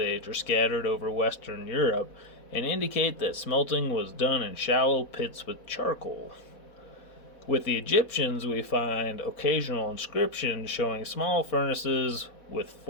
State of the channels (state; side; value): late; right; 4.1 ms